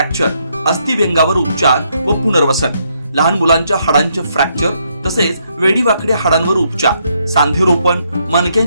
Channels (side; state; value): both; inverted; correlation -0.75